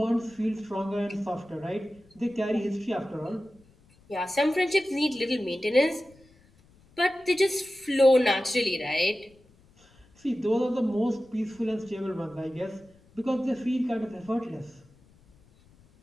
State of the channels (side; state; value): left; noise; rumble, 29 dB below the sound